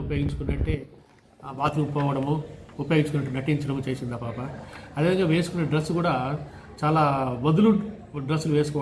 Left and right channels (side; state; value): both; identical; correlation 1.00